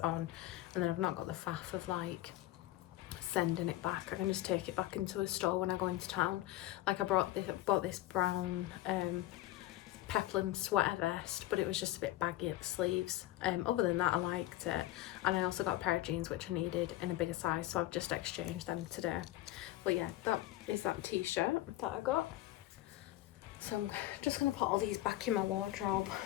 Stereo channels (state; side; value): quieter; right; 15.9 dB